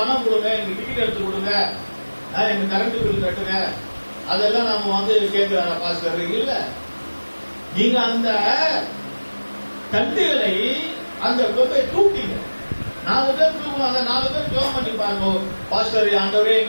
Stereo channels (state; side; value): inverted; both; correlation -1.00